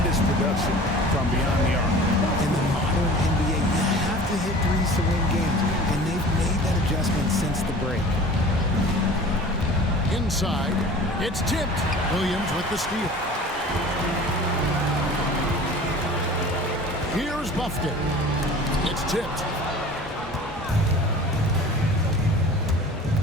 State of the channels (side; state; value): both; normal; correlation 0.42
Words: production from beyond the arc. In the modern NBA, you have to hit threes to win games, and they've made that adjustment since the break. Inside, it's tipped. Williams with the steal. Here's Buffkin. It's tipped.